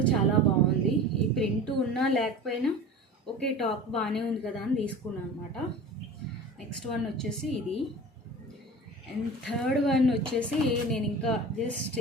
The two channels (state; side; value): normal; both; correlation 0.36